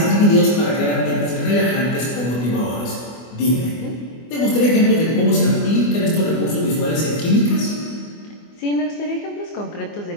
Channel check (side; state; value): right; late; 24 ms